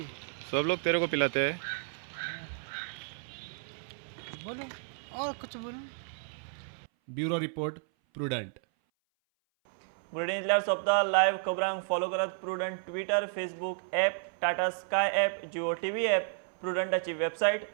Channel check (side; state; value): left; silent; 56 dB below the other